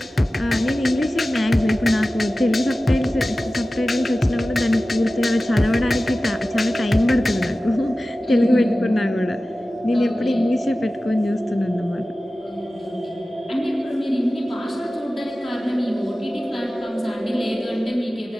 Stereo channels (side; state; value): both; normal; correlation 0.96